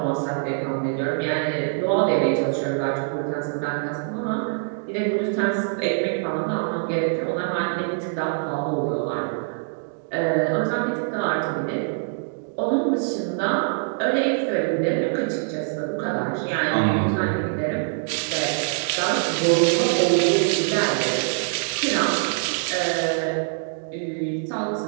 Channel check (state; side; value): silent; left; digital silence